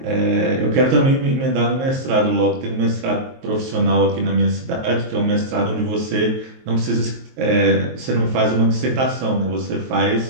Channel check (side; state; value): left; late; 23 ms